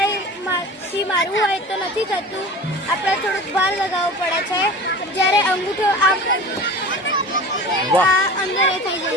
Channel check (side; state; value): both; normal; correlation 0.36